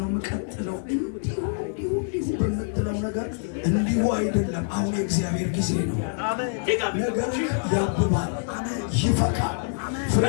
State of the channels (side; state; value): right; silent; digital silence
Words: የምቀጥለው? እንዲሁ በምትለው ነገር እንዲሁ አይደለም። አሁን የእግዚአብሔር ጊዜ ነው። ነገርህ ያብባል፣ ይፈካል፣ ፍሬ